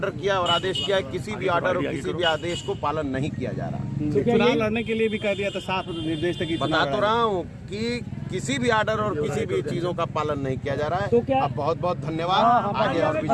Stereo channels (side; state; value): both; identical; correlation 1.00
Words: किया और आदेश किया है, किसी भी ऑर्डर और किसी भी आदेश को पालन नहीं किया जा रहा। चुनाव लड़ने के लिए भी कह दिया था, साफ निर्देश था कि बता तो रहा हूँ कि किसी भी ऑर्डर और किसी भी चीजों का पालन नहीं किया जा रहा तो है। क्या- अब बहुत बहुत धन्यवाद। आगे और भी